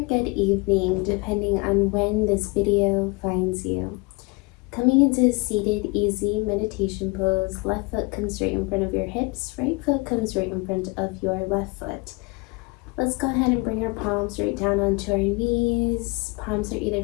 good evening, depending on when this video finds you. Coming into a seated, easy meditation pose, left foot comes right in front of your hips, right foot comes right in front of your left foot. Let's go ahead and bring our palms right down onto our knees. Palms are either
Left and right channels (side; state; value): right; quieter; 27.0 dB